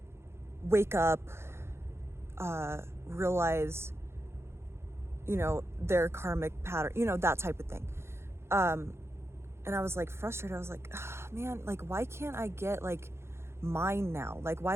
wake up, realize, their karmic pattern, that type of thing. And I was like frustrated. I was like, oh, man, like, why can't I get like mine now? Like,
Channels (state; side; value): late; left; 0.12 ms